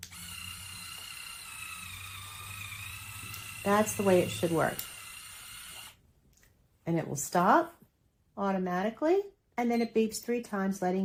That's the way it should work. And it will stop automatically, and then it beeps 3 times,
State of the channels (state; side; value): identical; both; correlation 1.00